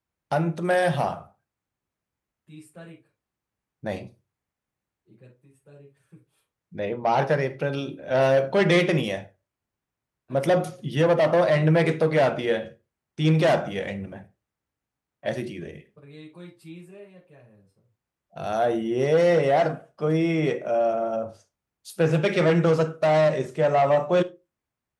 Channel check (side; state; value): both; identical; correlation 1.00